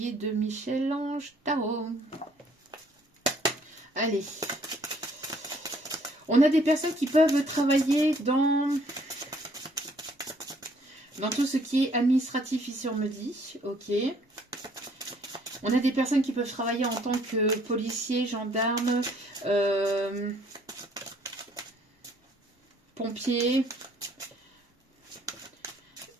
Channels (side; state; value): both; normal; correlation 0.62